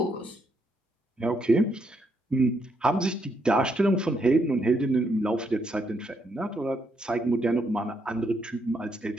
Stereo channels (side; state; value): both; normal; correlation 0.76